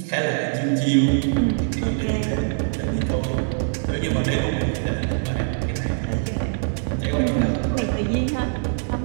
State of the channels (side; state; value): left; silent; 63 dB below the other